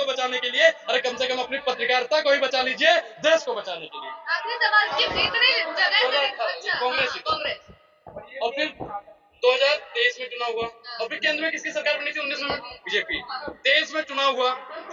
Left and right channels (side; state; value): both; identical; correlation 1.00